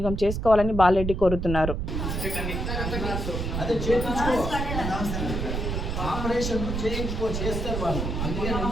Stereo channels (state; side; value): noise; right; rumble, 2 dB below the sound